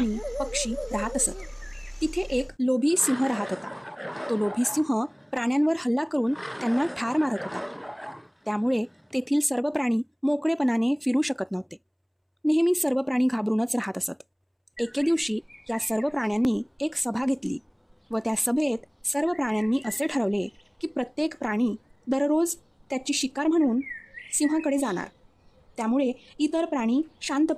पक्षी राहत असत. तिथे एक लोभी सिंह राहत होता. तो लोभी सिंह प्राण्यांवर हल्ला करून त्यांना ठार मारत होता. त्यामुळे तेथील सर्व प्राणी मोकळेपणाने फिरू शकत नव्हते. नेहमी सर्व प्राणी घाबरूनच राहत असत. एके दिवशी या सर्व प्राण्यांनी एक सभा घेतली व त्या सभेत सर्व प्राण्यांनी असे ठरवले की प्रत्येक प्राणी दररोज त्याची शिकार म्हणून सिंहाकडे जाणार. त्यामुळे इतर प्राणी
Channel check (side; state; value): both; identical; correlation 1.00